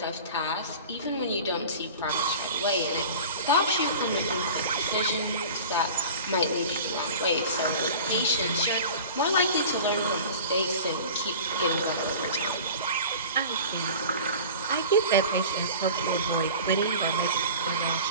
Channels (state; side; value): inverted; both; correlation -0.38